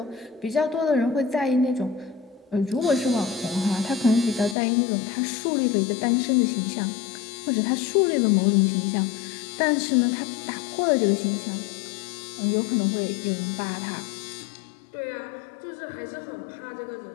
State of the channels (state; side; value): drops out; right; at 4.5 s